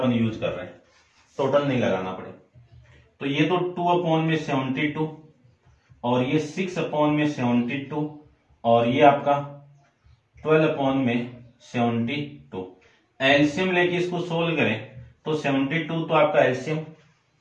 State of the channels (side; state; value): both; identical; correlation 1.00